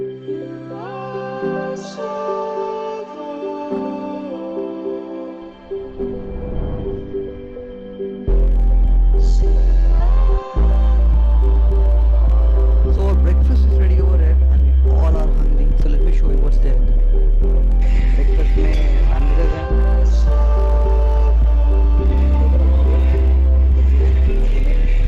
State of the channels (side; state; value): both; identical; correlation 1.00